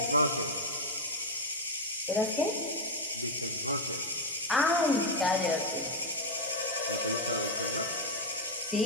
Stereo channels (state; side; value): normal; both; correlation 0.01